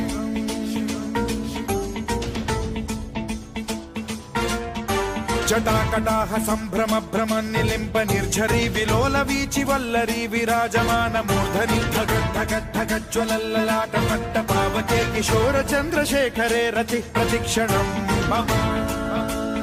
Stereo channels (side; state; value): both; identical; correlation 1.00